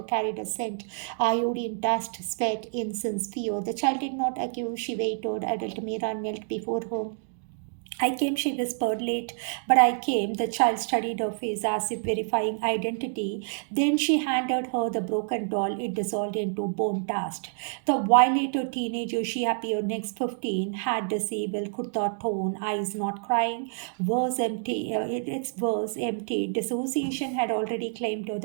carried a scent: iodine, dust, sweat, incense, fear. The child did not accuse, she waited. Adult Mira knelt before her, I came, she whispered, late, but I came. The child studied her face as if verifying identity. Then she handed her the broken doll. It dissolved into bone dust. The violated teenager, she appeared next 15, had disabled kurta tone, eyes not crying, was empty. Its was empty. Dissociation had already claimed her.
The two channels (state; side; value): silent; left; digital silence